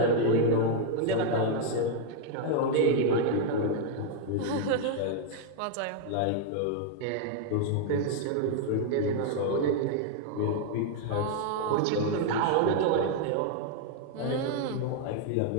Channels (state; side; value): different; both; correlation 0.00